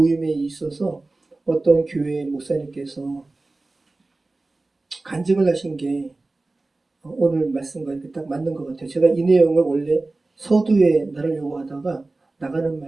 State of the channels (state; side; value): quieter; left; 3.2 dB